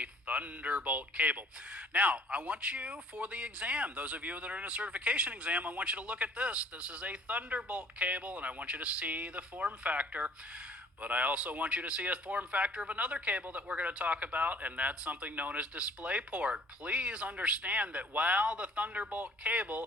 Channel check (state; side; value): normal; both; correlation 0.55